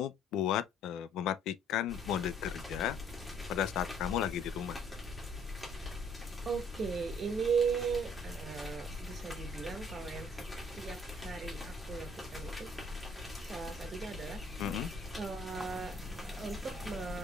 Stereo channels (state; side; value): normal; both; correlation 0.60